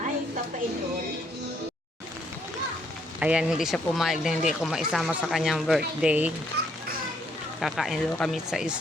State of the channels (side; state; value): both; normal; correlation 0.70